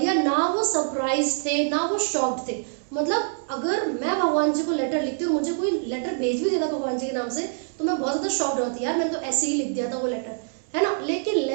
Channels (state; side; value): silent; left; digital silence